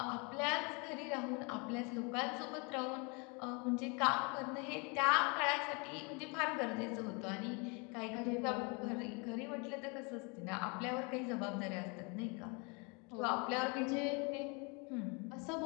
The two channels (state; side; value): quieter; right; 31.6 dB